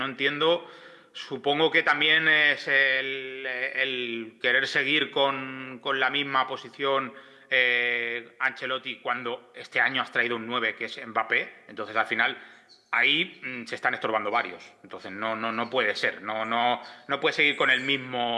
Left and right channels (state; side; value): identical; both; correlation 1.00